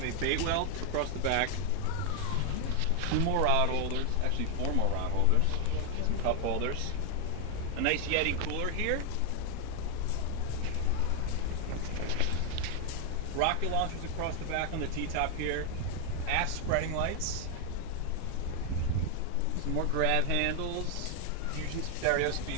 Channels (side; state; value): both; different; correlation 0.00